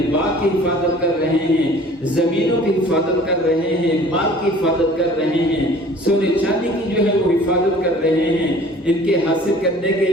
باغ کی حفاظت کر رہے ہیں، زمینوں کی حفاظت کر رہے ہیں، مال کی حفاظت کر رہے ہیں، سونے چاندی کی جو ہے وہ حفاظت کر رہے ہیں. ان کے حاصل کرنے کے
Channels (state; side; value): normal; both; correlation 0.49